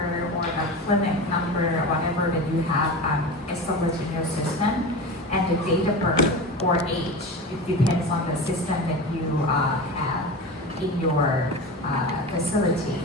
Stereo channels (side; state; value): both; normal; correlation 0.28